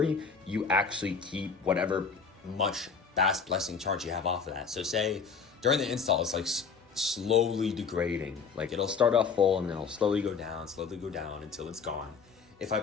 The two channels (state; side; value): quieter; right; 5.7 dB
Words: you actually keep whatever much Bass Blessing charge you have off of that. So say during the install, it's like slowly degrading. Like it'll start off full and then it'll slowly go down until it's gone. If I